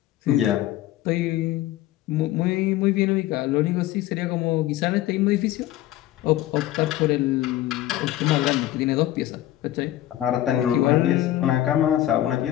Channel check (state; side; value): quieter; right; 13.9 dB